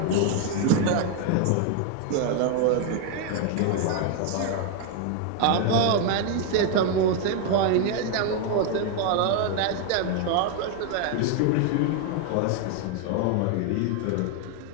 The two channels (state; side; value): different; both; correlation 0.01